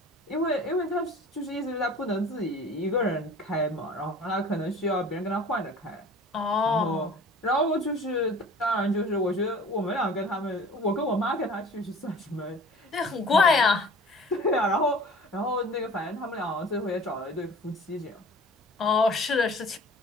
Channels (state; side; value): normal; both; correlation 0.44